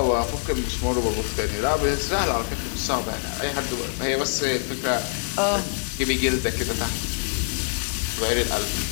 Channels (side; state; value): right; silent; 62 dB below the other